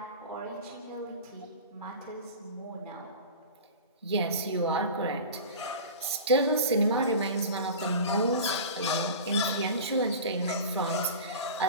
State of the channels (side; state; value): both; inverted; correlation -0.34